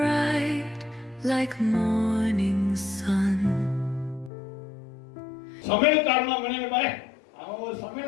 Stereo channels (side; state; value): right; drops out; at 4.3 s